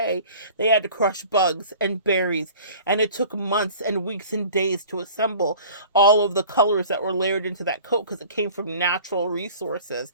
they had to crush bugs and berries, and it took months and weeks and days to assemble all of the colors that were layered into that coat, because it came from natural resources.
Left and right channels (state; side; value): inverted; both; correlation -0.45